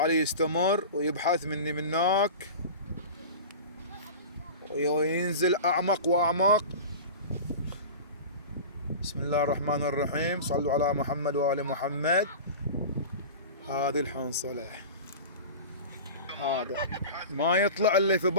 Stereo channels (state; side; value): inverted; both; correlation -0.32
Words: يستمر ويبحث مني منك وينزل اعمق واعمق. بسم الله الرحمن الرحيم. صلوا على محمد وآل محمد. هذه الحنصلة هذا ما يطلع الا في